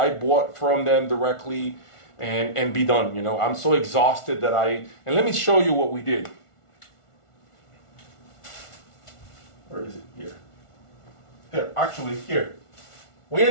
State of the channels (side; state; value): right; late; 1.4 ms